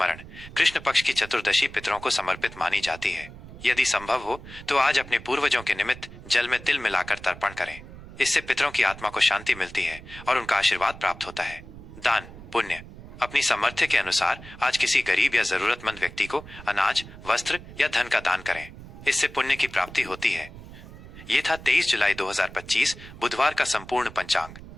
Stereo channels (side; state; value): right; noise; rumble, 16 dB below the sound